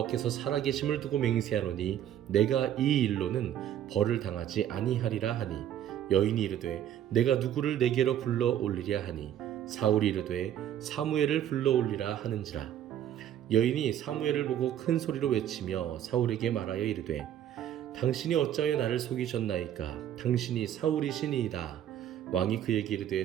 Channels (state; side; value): quieter; left; 10.7 dB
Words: 살아계심을 두고 맹세하노니 내가 이 일로는 벌을 당하지 아니하리라 하니, 여인이 이르되 내가 누구를 내게로 불러 올리랴 하니, 사울이 이르되 사무엘을 불러올리라 하는지라. 여인이 사무엘을 보고 큰 소리로 외치며 사울에게 말하여 이르되 당신이 어찌하여 나를 속이셨나이까? 당신이 사울이시니이다. 왕이 그에게